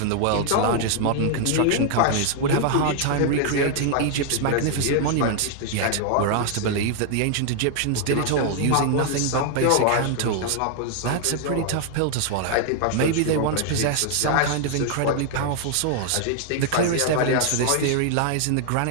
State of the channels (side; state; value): both; different; correlation 0.00